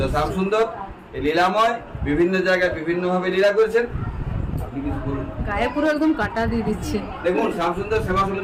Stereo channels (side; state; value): both; identical; correlation 1.00